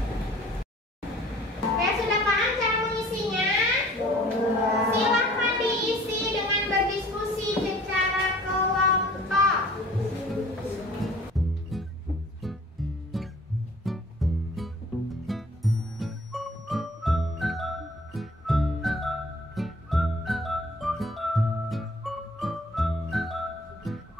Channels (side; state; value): both; normal; correlation 0.51